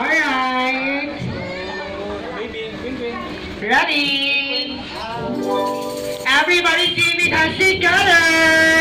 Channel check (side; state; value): both; identical; correlation 1.00